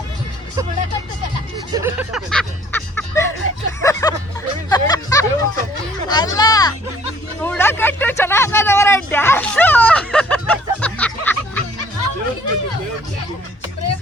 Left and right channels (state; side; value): normal; both; correlation 0.58